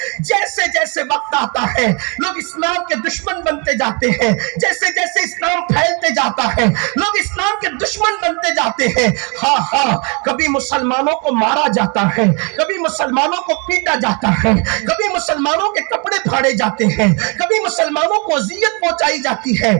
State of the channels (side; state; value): left; quieter; 33.3 dB